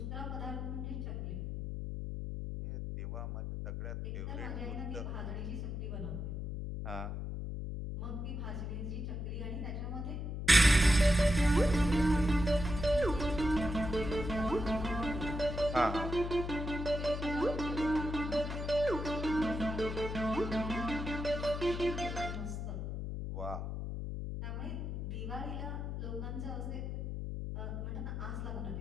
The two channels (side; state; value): left; noise; hum, 4 dB below the sound